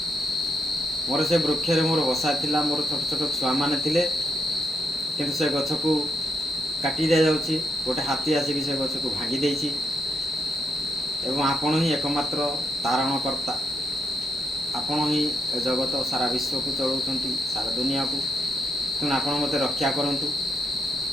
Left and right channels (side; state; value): both; normal; correlation 0.78